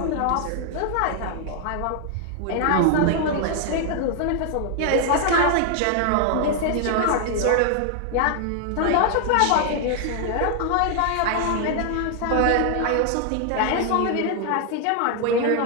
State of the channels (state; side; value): different; both; correlation 0.00